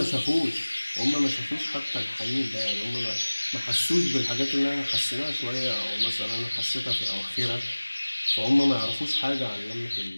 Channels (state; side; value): inverted; both; correlation -1.00